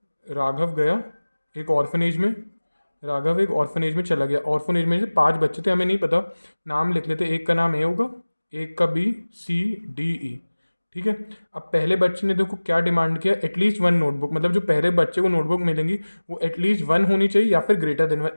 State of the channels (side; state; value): both; inverted; correlation -1.00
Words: राघव गया एक ऑर्फनेज में। राघव एक ऑर्फनेज में चला गया। ऑर्फनेज में से 5 बच्चे थे, हमें नहीं पता, नाम लिख लेते। एक का नाम ए होगा, एक का बी, सी, डी, ई। ठीक है। अब पहले बच्चे ने देखो क्या डिमांड किया? At least 1 notebook. मतलब जो पहले बच्चे को नोटबुक मिलेंगी वो एटलीस्ट 1 होनी चाहिए या फिर ग्रेटर देन